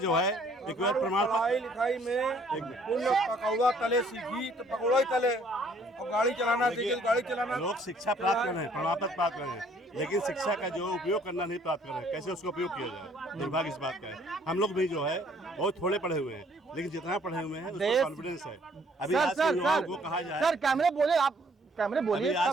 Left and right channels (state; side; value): normal; both; correlation 0.61